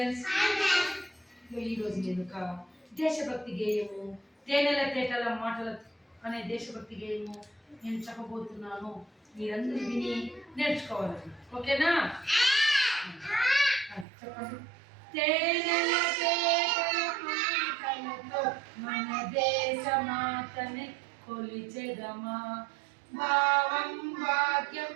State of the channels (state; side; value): drops out; left; at 14.1 s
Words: ఈరోజు నేను ఒక దేశభక్తి గేయము తేనెల తేటల మాటల అనే దేశభక్తి గేయము నేను చెప్పబోతున్నాను. మీరందరూ విని నేర్చుకోవాలి. ఓకేనా? చెప్పండి. తేనెల తేటల మాటలతో మన దేశ మాతని కొలిచెదమా, భావం భాగ్యం